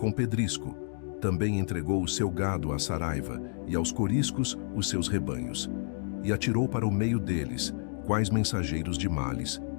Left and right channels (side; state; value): right; silent; digital silence